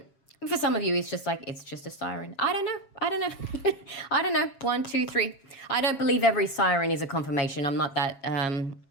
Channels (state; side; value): late; right; 7.3 ms